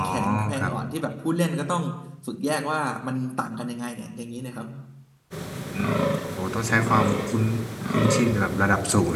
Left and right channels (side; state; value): both; identical; correlation 1.00